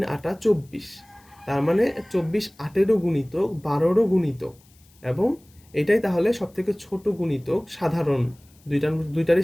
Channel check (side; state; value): left; noise; hiss, 30 dB below the sound